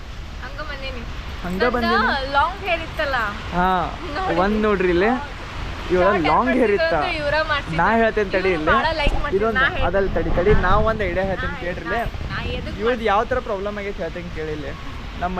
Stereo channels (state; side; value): identical; both; correlation 1.00